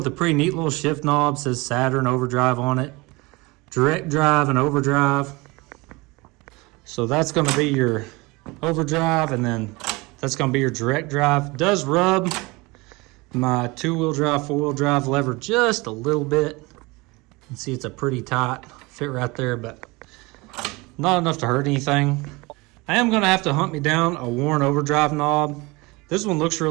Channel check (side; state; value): left; quieter; 24.2 dB